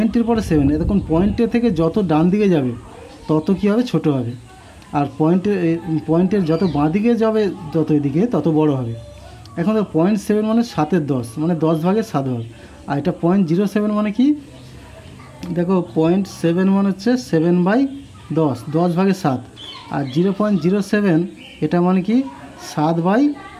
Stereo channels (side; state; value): both; identical; correlation 1.00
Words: পরে 7, এখন পয়েন্টের থেকে যত ডান দিকে যাবে তত কী হবে, ছোট হবে। আর পয়েন্টের যত বাঁ দিকে যাবে যত এদিকে তত বড় হবে। এখন দেখো 0.7 মানে 7-এর 10, মানে 10 ভাগের 7 ভাগ। আর এটা 0.07 মানে কি, দেখো 0.7 মানে হচ্ছে 7/10, 10 ভাগের 7। আর 0.07 এটা মানে কি